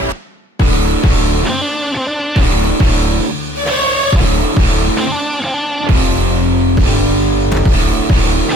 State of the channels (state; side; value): normal; both; correlation 0.64